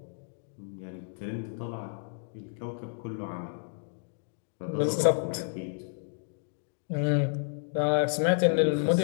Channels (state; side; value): silent; right; digital silence